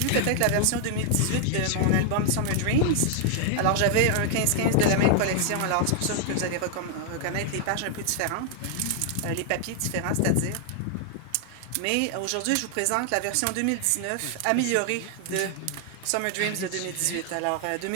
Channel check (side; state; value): both; different; correlation 0.00